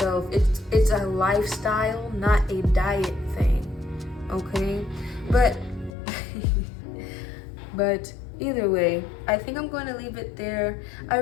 It's a lifestyle, not a diet thing. Okay? But either way, I think I'm going to leave it there. I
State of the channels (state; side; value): drops out; right; at 5.9 s